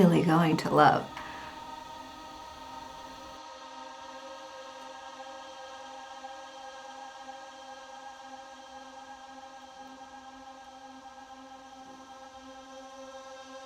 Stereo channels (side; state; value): both; identical; correlation 1.00